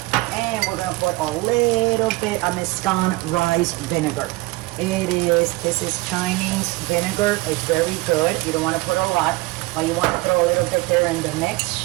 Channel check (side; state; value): left; quieter; 22.0 dB